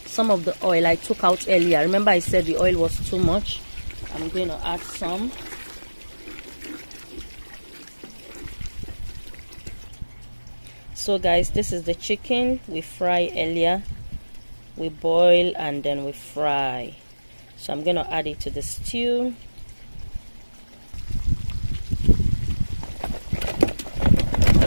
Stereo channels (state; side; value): inverted; both; correlation -1.00